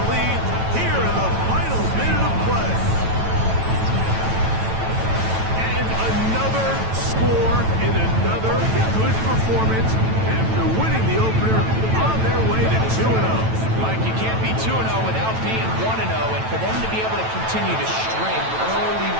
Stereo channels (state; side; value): late; left; 9.1 ms